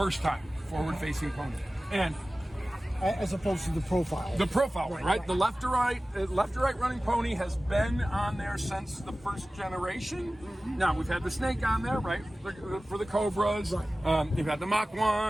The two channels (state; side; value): normal; both; correlation 0.97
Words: time, forward-facing pony. And as opposed to the profile. the profile, right? The left to right running pony has been on there since the first generation. Now we've had the snake on there, right, for the Cobras. Right. You've had the Mach